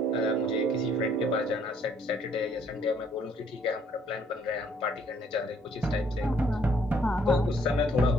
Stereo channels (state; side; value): normal; both; correlation 0.64